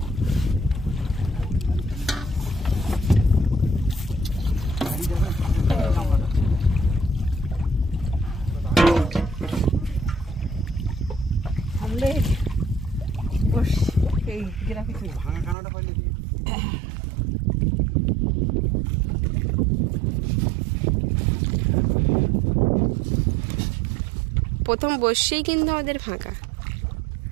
প্রথম বর্ষেই কিন্তু আমাদের ফাঁকা।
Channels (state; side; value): drops out; left; at 15.6 s